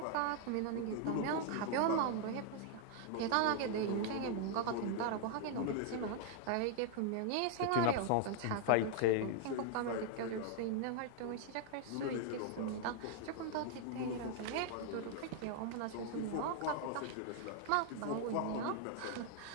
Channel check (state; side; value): different; both; correlation 0.00